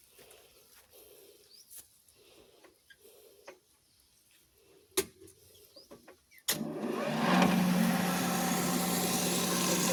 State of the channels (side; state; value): both; identical; correlation 1.00